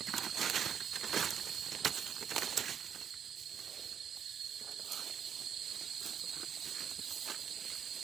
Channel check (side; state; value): left; quieter; 8.1 dB